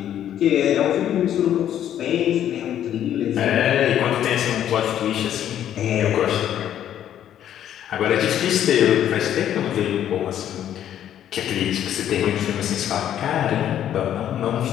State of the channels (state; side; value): quieter; right; 10.7 dB